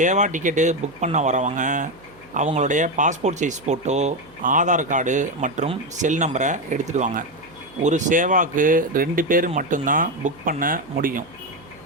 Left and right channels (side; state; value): right; noise; hum, 26 dB below the sound